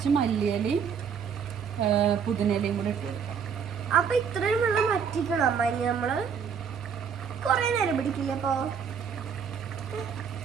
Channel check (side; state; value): left; quieter; 6.9 dB